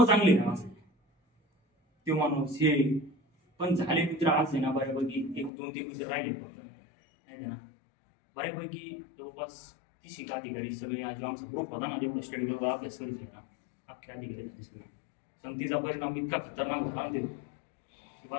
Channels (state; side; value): drops out; right; at 5.5 s